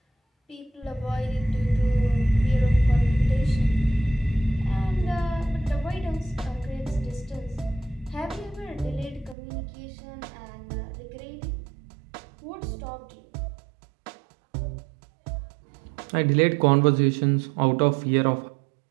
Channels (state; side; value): drops out; left; at 9.3 s